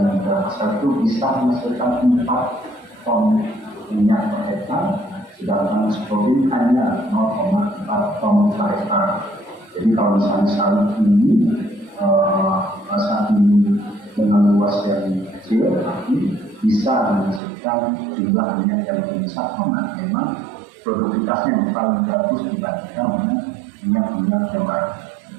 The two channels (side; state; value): left; drops out; at 17.4 s